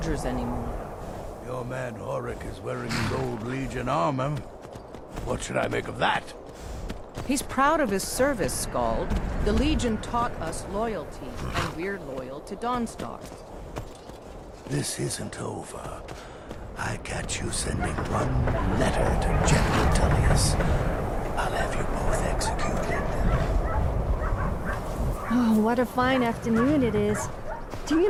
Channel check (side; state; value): both; identical; correlation 1.00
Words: anymore. Your man Horik is wearing his old Legion armor. What should I make of that? He's proud of his service, Skald. The Legion taught us loyalty, and we're loyal to Dawnstar. This isn't over. I catch you sending one letter to General Tullius. I'll have you both executed. Oh, what a fine afternoon it is. Do